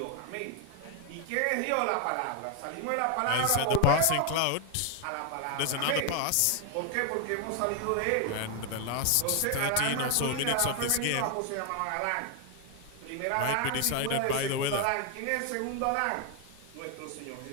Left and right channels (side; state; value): both; different; correlation 0.01